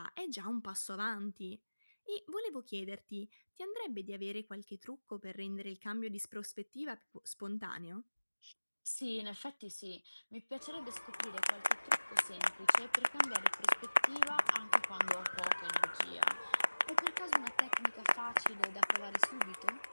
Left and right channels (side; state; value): both; inverted; correlation -1.00